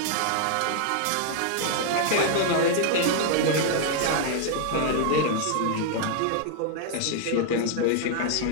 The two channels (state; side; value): different; both; correlation 0.00